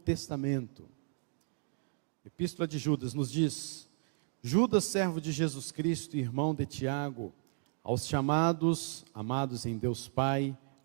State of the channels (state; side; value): silent; left; digital silence